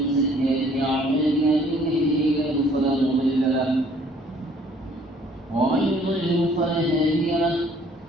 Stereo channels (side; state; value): both; normal; correlation 0.59